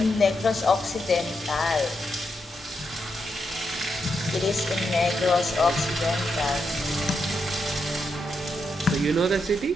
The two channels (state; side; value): normal; both; correlation 0.83